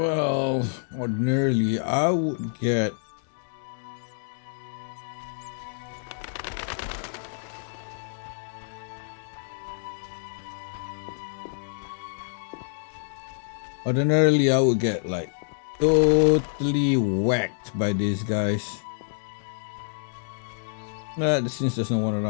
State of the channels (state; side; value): silent; right; digital silence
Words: ordinarily I would get like totally whacked by these guys. Since there's no one